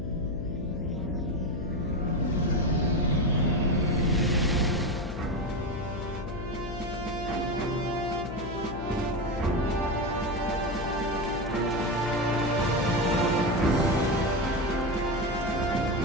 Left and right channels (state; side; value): noise; left; hum, 7 dB below the sound